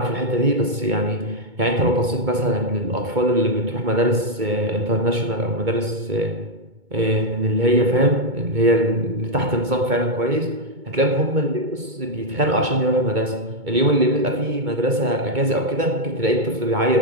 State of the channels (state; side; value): late; left; 2.2 ms